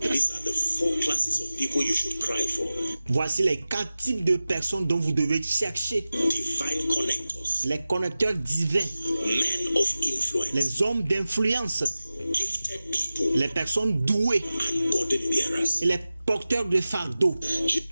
these are the 4 classes of people you should cry for. voici les 4 types de personnes dont vous devez chercher. Divine connectors, Les connecteurs divins, men of influence, les hommes d'influence, gifted people, les personnes douées and burden bearers. et les porteurs de fardeau.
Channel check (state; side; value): inverted; both; correlation -0.96